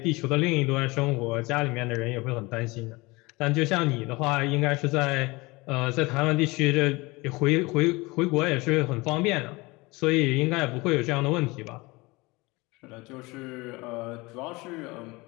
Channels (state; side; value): quieter; right; 23.6 dB